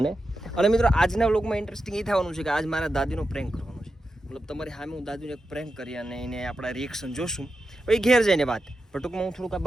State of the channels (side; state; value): both; normal; correlation 0.89